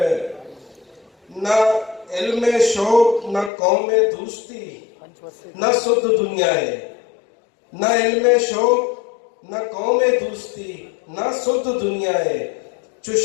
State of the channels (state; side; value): drops out; right; at 3.5 s